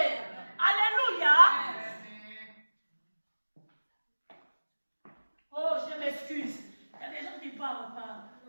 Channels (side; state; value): both; inverted; correlation -1.00